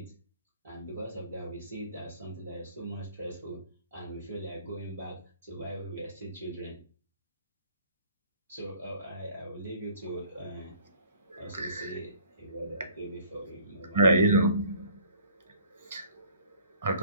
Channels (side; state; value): both; inverted; correlation -0.55